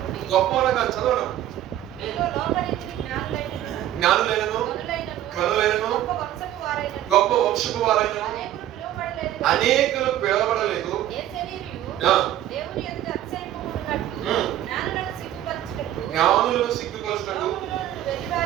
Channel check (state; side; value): quieter; left; 12.7 dB